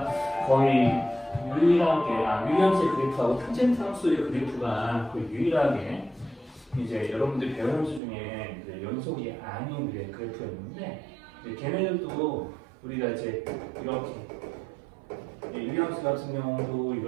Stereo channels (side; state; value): left; drops out; at 8.0 s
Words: 거의 유일하게, 유리함수의 그래프하고 탄젠트 함수의 그래프가 거의 유일하게 이제 여러분들이 배운 함수 중에 이제 연속이 아닌 그래프였는데, 이제 걔네들도 우리가 이제 이렇게 유리함수 같은 경우도